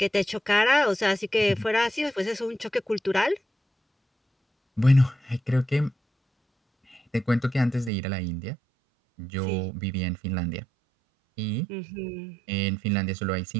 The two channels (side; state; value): left; drops out; at 7.9 s